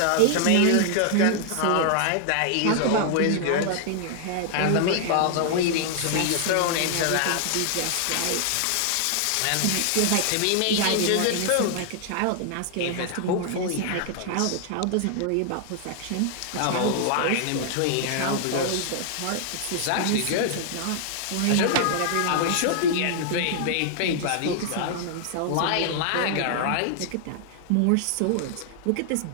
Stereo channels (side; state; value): both; different; correlation 0.00